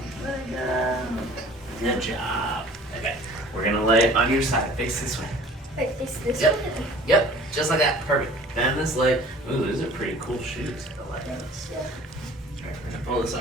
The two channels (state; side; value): normal; both; correlation 0.48